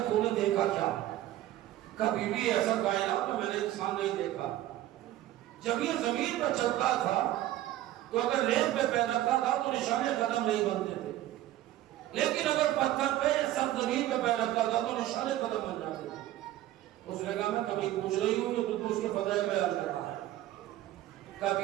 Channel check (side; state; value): left; quieter; 14.1 dB